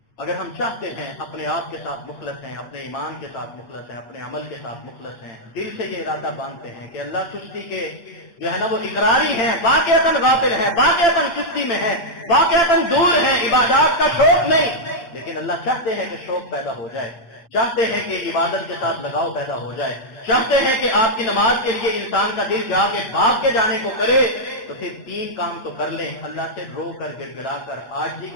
اگر ہم چاہتے ہیں اپنے آپ کے ساتھ مخلص ہیں، اپنے ایمان کے ساتھ مخلص ہیں، اپنے عمل کے ساتھ مخلص ہیں، دل سے یہ ارادہ باندھتے ہیں کہ اللہ چستی کے جو ہے نا وہ اقراری ہیں، واقعتاً غافل ہیں، واقعتاً چستی میں ہیں، واقعتاً دور ہیں، عبادات کا شوق نہیں، لیکن اللہ چاہتے ہیں کہ شوق پیدا ہو جائے، چاہتے ہیں کہ عبادت کے ساتھ لگاؤ پیدا ہو جائے، چاہتے ہیں کہ آپ کی نماز کے لیے انسان کا دل جا کے بھاگ کے جانے کو کرے، تو پھر 3 کام تو کر لیں، اللہ سے رو کر گڑ گڑا کر عاجزی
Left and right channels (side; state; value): right; late; 8.9 ms